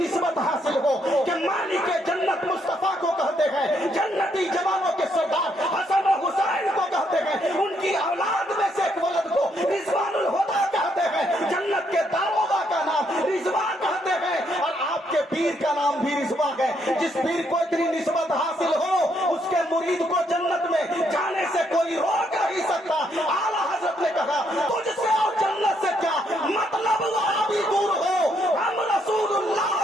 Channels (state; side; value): normal; both; correlation 0.74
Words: حاصل ہو کہ مالک جنت مصطفیٰ کو کہتے ہیں، جنتی جوانوں کے سردار حسن و حسین کو کہتے ہیں، ان کی اولاد میں سے ایک ولد کو رضوان الہدا کہتے ہیں، جنت کے داروغہ کا نام رضوان کہتے ہیں، اور آپ کے پیر کا نام بھی رضوان ہے۔ جس پیر کو اتنی نسبت حاصل ہو، اس کے مرید کو جنت میں جانے سے کوئی روک نہیں سکتا۔ اعلیٰ حضرت نے کہا تجھ سے اور جنت سے کیا مطلب، بھی دور ہو، ہم رسول اللہ